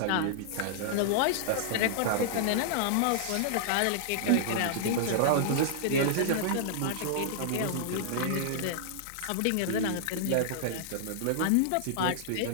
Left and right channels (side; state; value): both; different; correlation -0.01